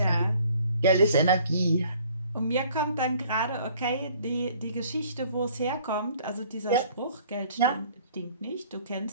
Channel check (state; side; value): inverted; both; correlation -0.56